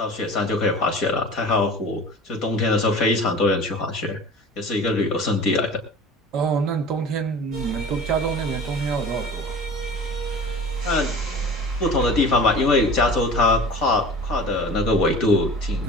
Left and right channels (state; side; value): normal; both; correlation 0.40